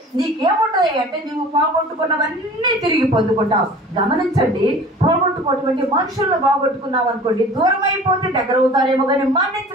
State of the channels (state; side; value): normal; both; correlation 0.43